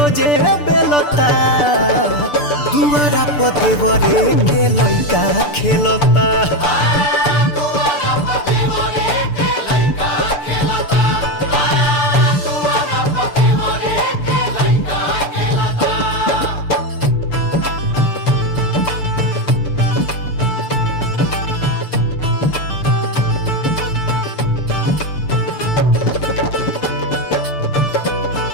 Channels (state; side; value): late; right; 6.8 ms